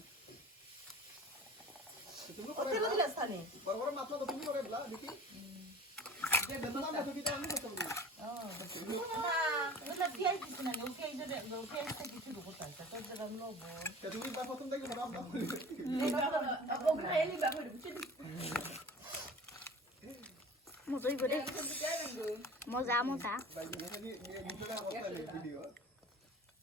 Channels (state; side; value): normal; both; correlation 0.40